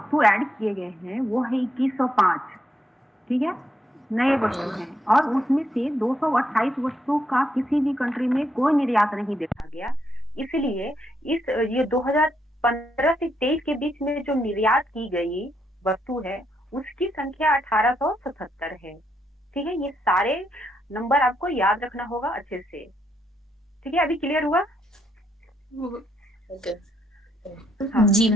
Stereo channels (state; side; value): normal; both; correlation 0.77